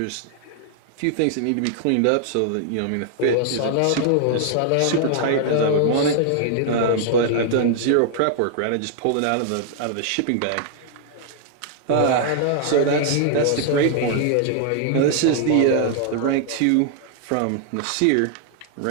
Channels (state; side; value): different; both; correlation 0.00